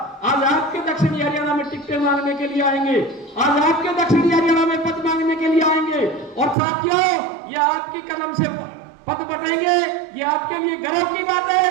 आज आपके दक्षिणी हरियाणा में टिकटें मांगने के लिए आएंगे, आज आपके दक्षिणी हरियाणा में पद मांगने के लिए आएंगे। और साथियों, ये आपकी कलम से पद बटेंगे, ये आपके लिए गर्व की बात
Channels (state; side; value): drops out; left; at 6.6 s